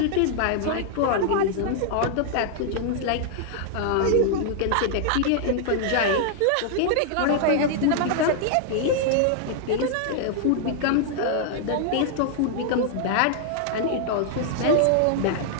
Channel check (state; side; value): different; both; correlation -0.01